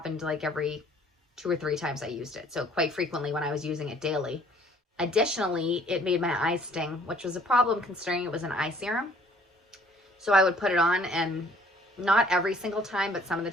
like every 2 or 3 times I used it. So quite frequently when I was using it daily. Additionally, it made my eyes sting, which was a problem considering it was an eye serum. So I would put it on and Not every single time, but some of the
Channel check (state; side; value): normal; both; correlation 0.58